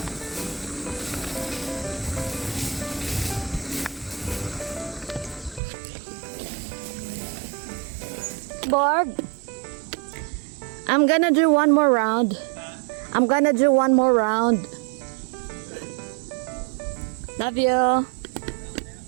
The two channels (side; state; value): left; drops out; at 5.6 s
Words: Borg, I'm gonna do one more round. I'm gonna do one more round. Love you.